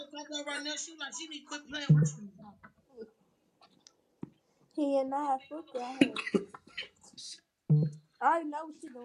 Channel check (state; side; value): identical; both; correlation 1.00